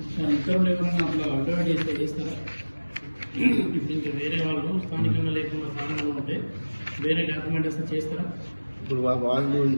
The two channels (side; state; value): both; inverted; correlation -1.00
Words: ఇతరులు ఎవరైనా అట్లా అడ్వర్టైజ్ చేస్తే చేస్తారా? ఇప్పుడు ఇంకా వేరే వాళ్ళు స్థానికంగా లేకుండా స్థానికంగా ఉంటే వేరే డాక్యుమెంట్ వస్తే చేస్తారా? ఇప్పుడు వాళ్ళు